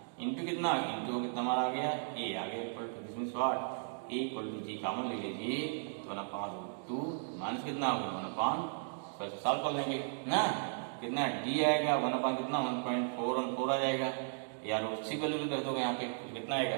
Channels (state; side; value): silent; left; digital silence